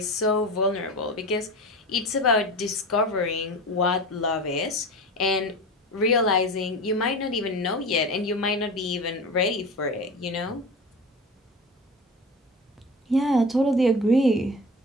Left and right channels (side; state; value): both; normal; correlation 0.30